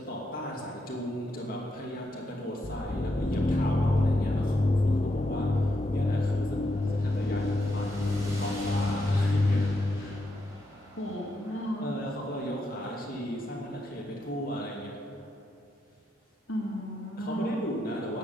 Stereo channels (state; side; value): normal; both; correlation 0.81